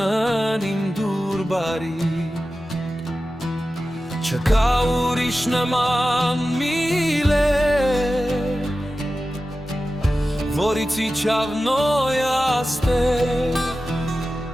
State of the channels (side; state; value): both; normal; correlation 0.94